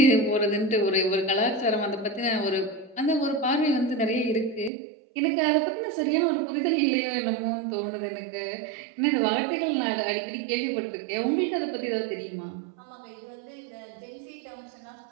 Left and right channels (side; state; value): left; drops out; at 4.7 s